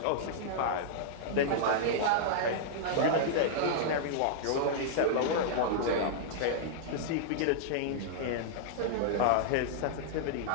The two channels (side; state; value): both; different; correlation -0.02